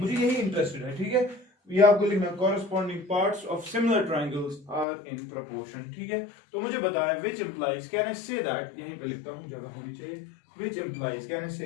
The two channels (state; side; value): drops out; right; at 4.9 s